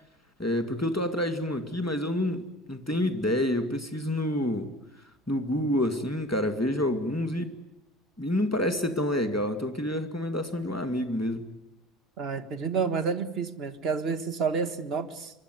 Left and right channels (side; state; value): both; normal; correlation 0.40